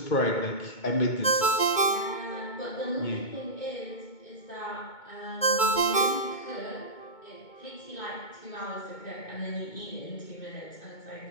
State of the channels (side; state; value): right; late; 2.2 ms